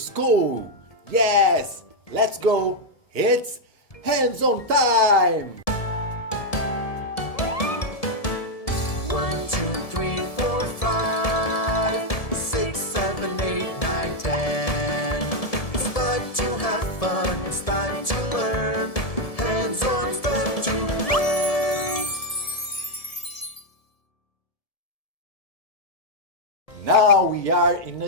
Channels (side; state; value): right; late; 1.7 ms